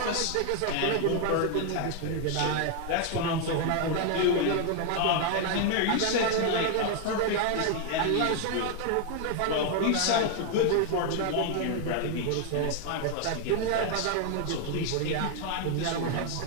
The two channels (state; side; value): different; both; correlation 0.00